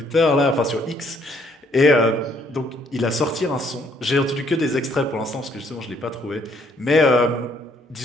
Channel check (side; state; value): both; normal; correlation 0.66